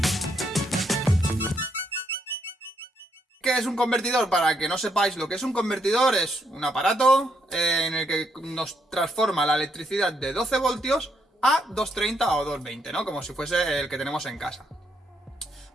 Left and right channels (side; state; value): both; normal; correlation 0.76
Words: ¿Qué es un convertidor? Para que no sepáis lo que es un convertidor, es un aparato en el que nos transforma la electricidad de 12 voltios a 230 o 220, ¿no? Como si fuese el que tenemos en casa.